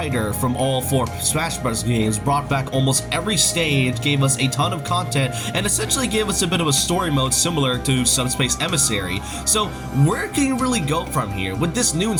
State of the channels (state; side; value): identical; both; correlation 1.00